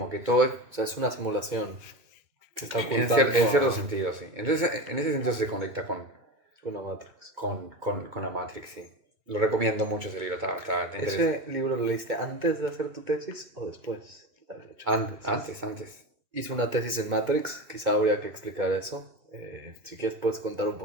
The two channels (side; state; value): left; late; 2.2 ms